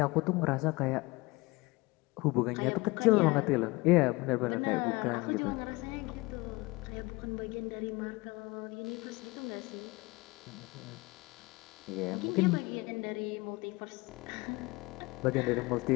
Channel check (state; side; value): quieter; right; 23.5 dB